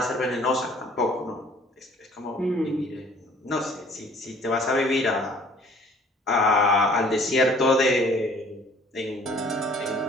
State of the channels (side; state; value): both; normal; correlation 0.54